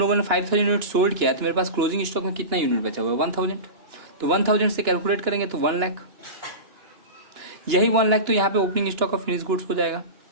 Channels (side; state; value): left; late; 2.9 ms